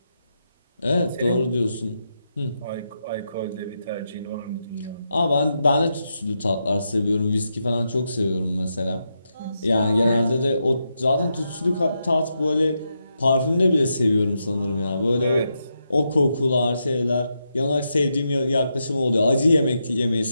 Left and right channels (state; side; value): inverted; both; correlation -0.85